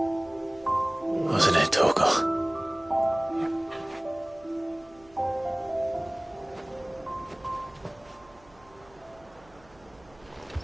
Wasn't it, Torgal?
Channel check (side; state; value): right; noise; hum, 27 dB below the sound